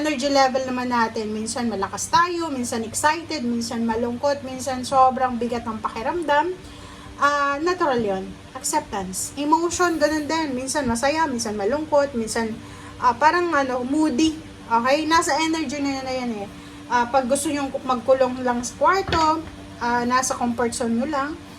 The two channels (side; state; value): both; identical; correlation 1.00